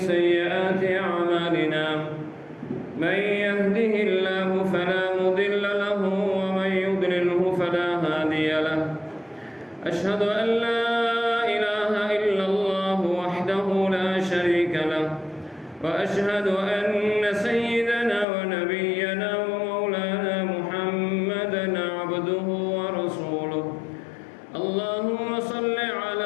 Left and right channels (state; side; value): drops out; right; at 18.2 s